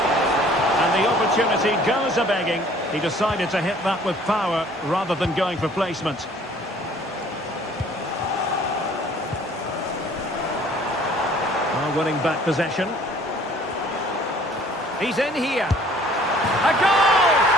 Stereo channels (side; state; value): both; normal; correlation 0.54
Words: And the opportunity goes a-begging. He decided to hit that with power rather than going for placement. Winning back possession. He's in here. A goal!